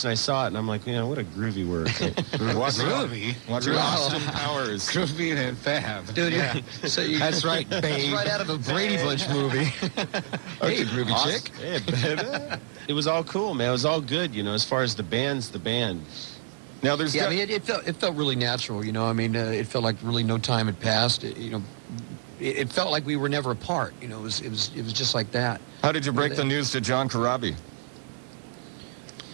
and I saw it, and I'm like, what a groovy word. Groovy? Austin Powers. Groovy and fab. Dude, that's right, babe. That's right out of a Brady Bunch movie. Hey, groovy chick. Hey, baby. It was all cool, man. It was all good, as far as the band's the band. Now, there's I mean, it felt really natural, I mean, it felt like really no time had passed. It felt like we were never apart. It was just like that. How did you break the news to John Corabi?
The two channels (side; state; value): left; silent; digital silence